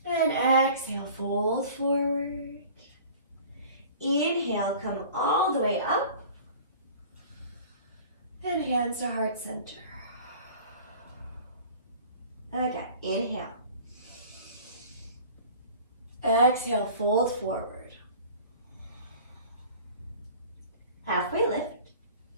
And exhale, fold forward. Inhale, come all the way up. And hands to heart center. Again, inhale. Exhale, fold forward. Halfway lift.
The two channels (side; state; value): both; inverted; correlation -0.44